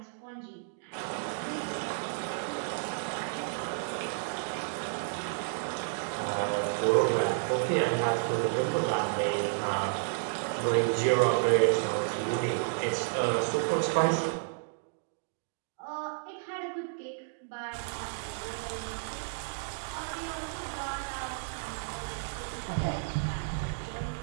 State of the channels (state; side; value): silent; left; digital silence